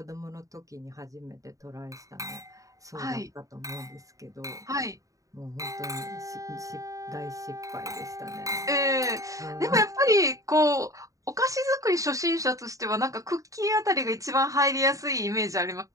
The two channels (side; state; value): left; late; 0.16 ms